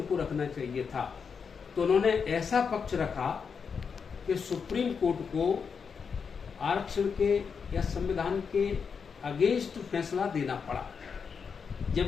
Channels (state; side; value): quieter; right; 6.0 dB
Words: रखना चाहिए था, तो उन्होंने ऐसा पक्ष रखा कि सुप्रीम कोर्ट को आरक्षण के या संविधान के अगेंस्ट फैसला देना पड़ा,